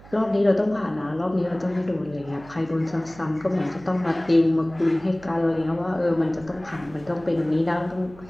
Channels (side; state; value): right; noise; hum, 21 dB below the sound